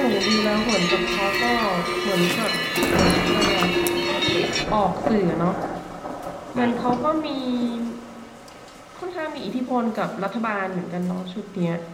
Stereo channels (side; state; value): both; identical; correlation 1.00